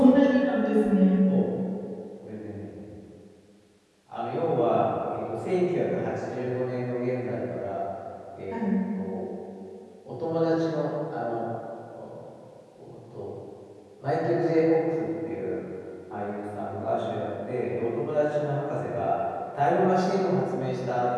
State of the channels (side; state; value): both; identical; correlation 1.00